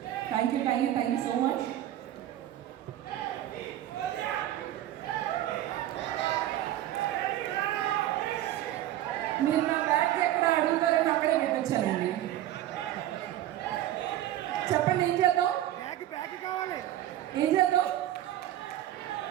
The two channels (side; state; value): left; quieter; 13.2 dB